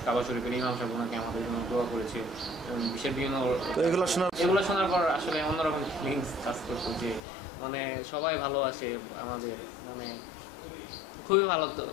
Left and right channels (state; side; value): drops out; right; at 7.2 s